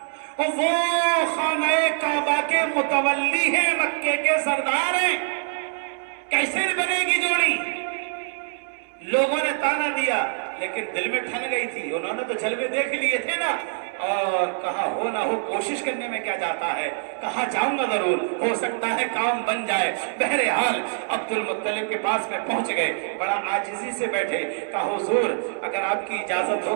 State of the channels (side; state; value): left; silent; 62 dB below the other